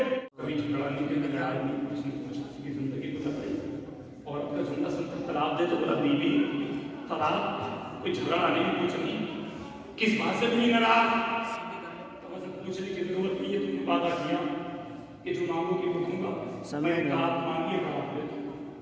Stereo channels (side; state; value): both; identical; correlation 1.00